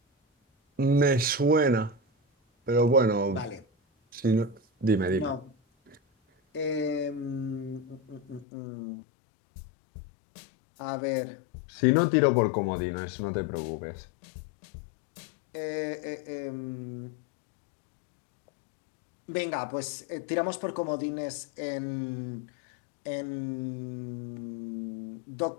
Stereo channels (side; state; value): right; drops out; at 8.5 s